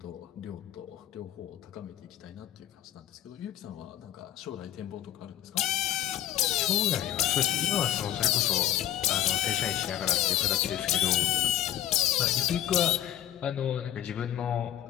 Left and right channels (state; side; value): quieter; right; 12.3 dB